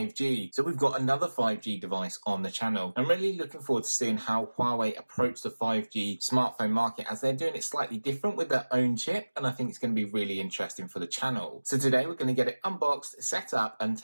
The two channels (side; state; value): both; inverted; correlation -1.00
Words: So we've got another 5G device on the channel. I'm really looking forward to seeing how Huawei approach the 5G smartphone market as they're doing it slightly different with their own chip, and I think it's going to be really interesting for the channel. So today we're going to get it unboxed, set up and